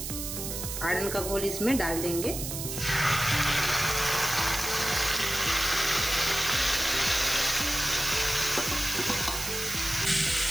आड़न का घोल इसमें डाल देंगे।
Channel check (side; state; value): right; noise; hiss, 5 dB below the sound